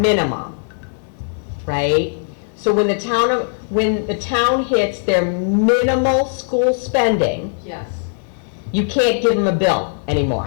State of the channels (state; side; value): silent; right; digital silence